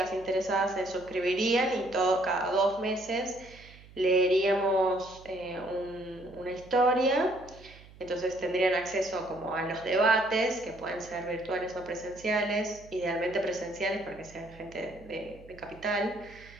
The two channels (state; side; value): noise; right; hum, 21 dB below the sound